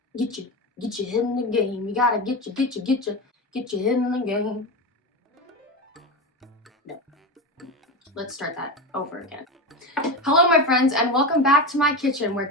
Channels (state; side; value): normal; both; correlation 0.20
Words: Get your head in the game. You gotta get your head in the game. No. Let's start that over again. Hello my friends and welcome back to my kitchen where